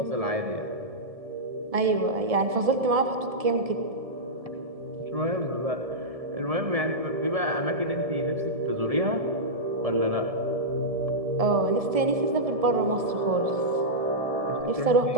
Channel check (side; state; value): left; late; 1.7 ms